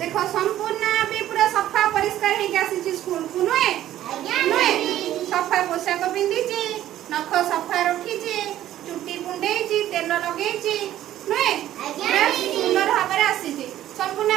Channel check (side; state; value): left; quieter; 12.9 dB